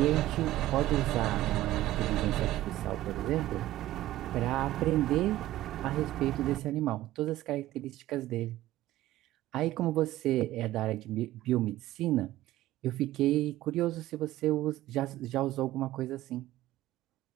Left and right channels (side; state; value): left; quieter; 15.3 dB